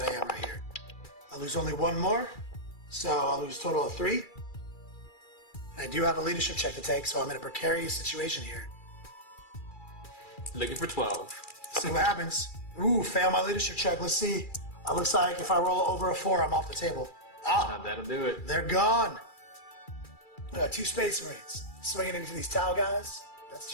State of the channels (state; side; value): late; right; 2.3 ms